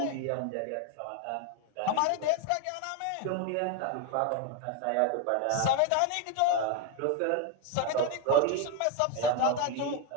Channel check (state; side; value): different; both; correlation 0.01